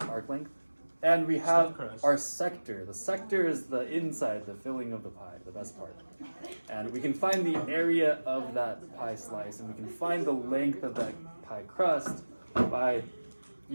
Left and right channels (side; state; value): both; inverted; correlation -1.00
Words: arc length. And we have crust. our sector. The sector is the inside, the filling of the pie, the best part. And we can find the area of that pie slice, and we can find the length of that pie crust by